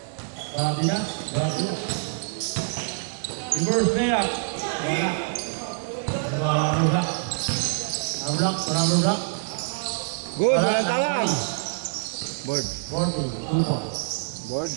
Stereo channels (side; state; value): left; silent; 61 dB below the other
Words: Bardina. Reverse layup. Wala. Number black. Number black. Good, walang tawag. Board. 40, 2 points. Board